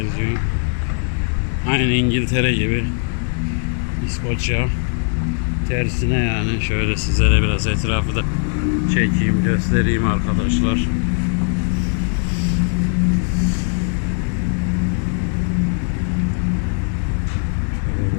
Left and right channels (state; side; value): silent; right; 58 dB below the other